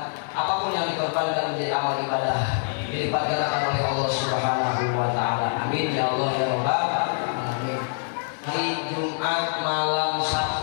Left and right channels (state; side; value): silent; right; digital silence